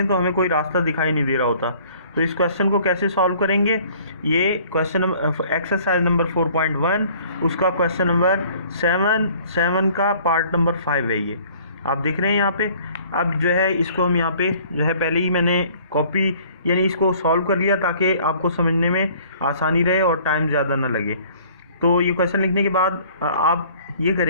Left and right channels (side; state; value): both; inverted; correlation -0.55